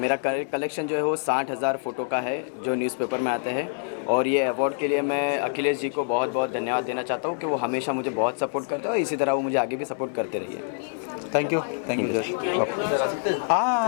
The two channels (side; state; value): right; silent; digital silence